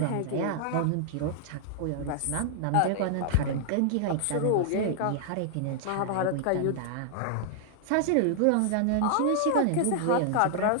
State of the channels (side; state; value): both; different; correlation -0.01